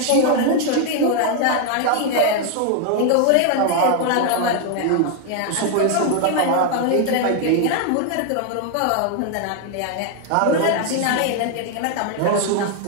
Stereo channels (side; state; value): both; different; correlation 0.00